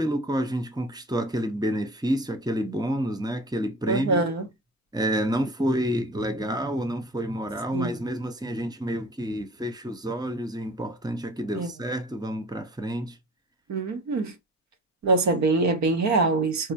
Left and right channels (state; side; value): normal; both; correlation 0.38